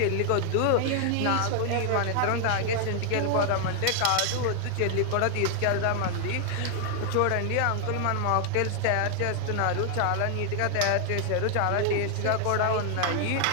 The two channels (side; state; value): both; different; correlation 0.00